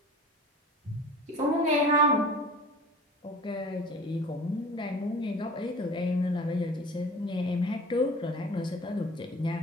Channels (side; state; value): both; normal; correlation 0.41